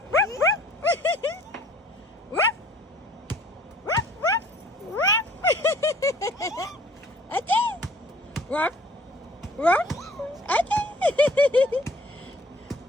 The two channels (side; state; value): both; normal; correlation 0.54